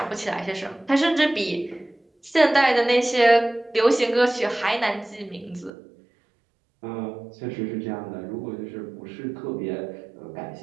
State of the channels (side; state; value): left; drops out; at 5.7 s